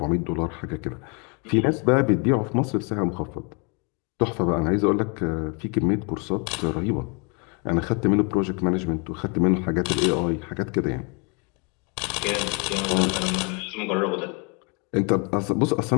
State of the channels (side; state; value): right; quieter; 33.5 dB